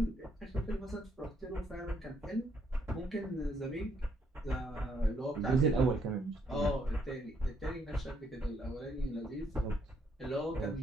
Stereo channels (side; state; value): both; normal; correlation 0.71